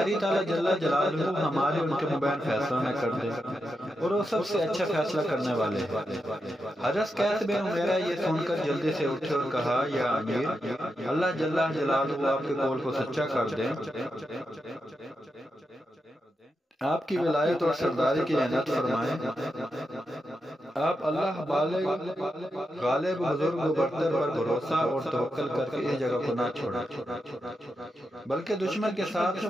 تعالیٰ جل جلالہ ہمارے ان کے مبین فیصلہ نہ کر دے، اور وہ سب سے اچھا فیصلہ کرنے والے ہیں۔ حضرت قیس بن عمارہ یہ سن کر جلدی سے اٹھے اور کہا یا امیر، اللہ جل جلالہ آپ کے قول کو سچا کر دیں، آپ کی ولایت اور سرداری کی عنایت فرمائیں، آپ اللہ بالغ غالب بزرگ و برتر پر بھروسہ اور توکل کر کے اس جگہ کو نہ چھوڑیں، بلکہ دشمن کے ساتھ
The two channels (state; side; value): normal; both; correlation 0.87